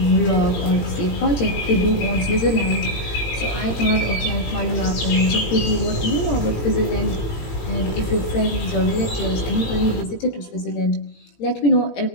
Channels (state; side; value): late; right; 18 ms